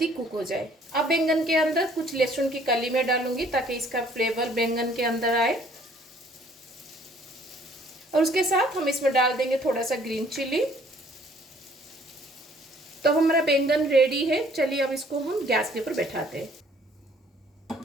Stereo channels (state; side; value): normal; both; correlation 0.59